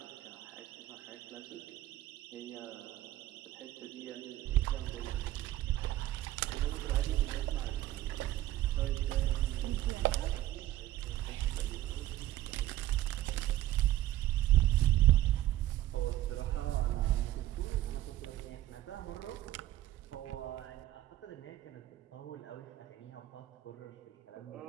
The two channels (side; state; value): left; quieter; 14.5 dB